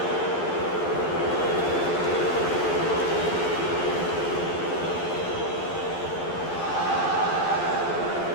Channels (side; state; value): right; late; 12 ms